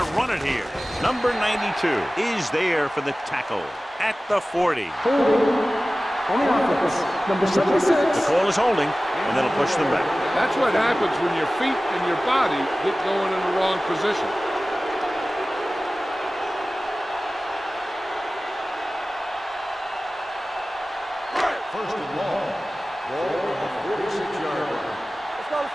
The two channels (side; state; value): both; normal; correlation 0.97